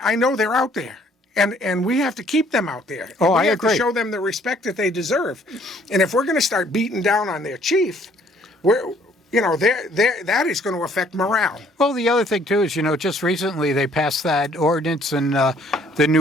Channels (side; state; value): both; normal; correlation 0.61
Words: know they're out there, and we have to keep them out there. Oh, I agree. We have to show them the respect that they deserve, and if we're going to start beating down on their chief, that is going to affect morale. Well, the other thing, too, is, just recently they passed that ordinance and the